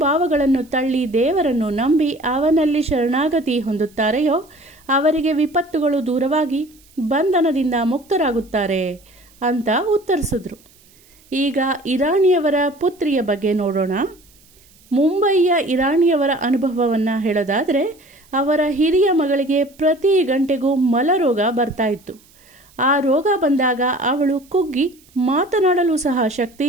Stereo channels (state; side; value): noise; right; hiss, 29 dB below the sound